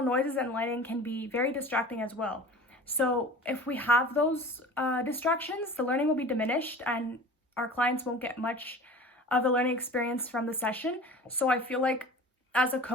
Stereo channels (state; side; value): normal; both; correlation 0.39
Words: noises and lighting can be very distracting as well. So if we have those distractions, the learning will be diminished and our clients won't get much of the learning experience from the session. So I feel like as a